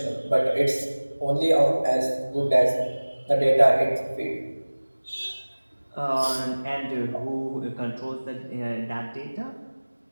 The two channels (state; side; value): inverted; both; correlation -1.00